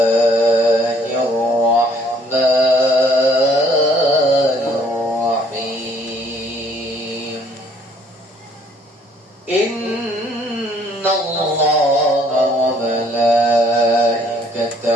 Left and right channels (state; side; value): normal; both; correlation 0.61